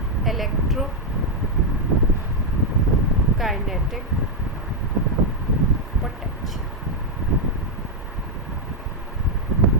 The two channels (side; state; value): both; normal; correlation 0.00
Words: इलेक्ट्रो काइनेटिक पोटेंशियल।